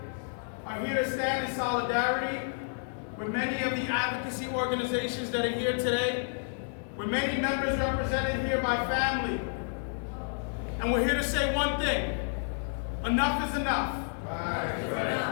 are here to stand in solidarity with many of the advocacy organizations that are here today, with many members represented here by family. And we're here to say one thing: enough is enough.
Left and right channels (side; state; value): right; silent; 57 dB below the other